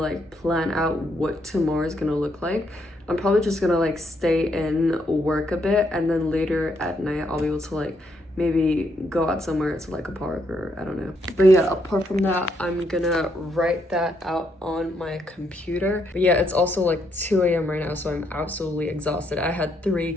plan out what tomorrow is gonna look like. I'm probably just gonna like stay in, work a bit, and then later at night I'll be able to like maybe go out somewhere to like a park or I don't know. But yeah, apart from that, I'm gonna write that out on my computer. But yeah, it's also like 2 a.m. right now, so I'm absolutely exhausted. I had 3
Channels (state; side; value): normal; both; correlation 0.75